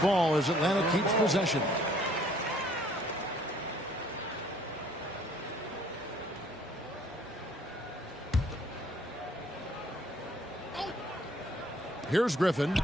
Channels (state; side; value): normal; both; correlation 0.60